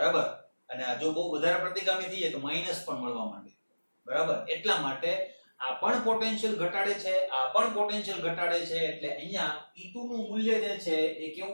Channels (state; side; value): inverted; both; correlation -1.00